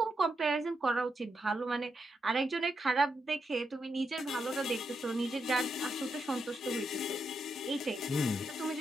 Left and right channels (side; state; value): both; normal; correlation 0.83